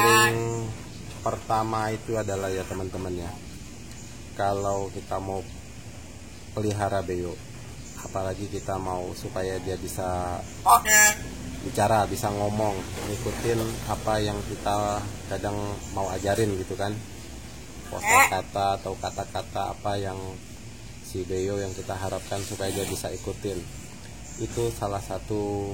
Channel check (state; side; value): identical; both; correlation 1.00